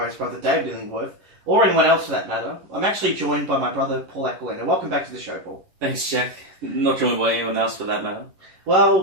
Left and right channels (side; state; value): left; late; 11 ms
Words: Brother David Illingworth, or anyone else for that matter. I'm actually joined by my brother, Paul Aquilina. Welcome back to the show, Paul. Thanks, Jack. Not joined by anyone else for that matter.